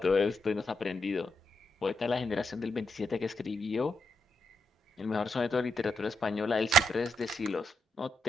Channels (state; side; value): normal; both; correlation 0.81